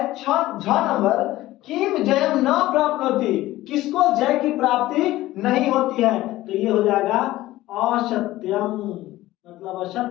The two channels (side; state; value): right; quieter; 16.4 dB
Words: झ नंबर, किम जयम न प्राप्नोति, किसको जय की प्राप्ति नहीं होती है, तो ये हो जाएगा असत्यम, मतलब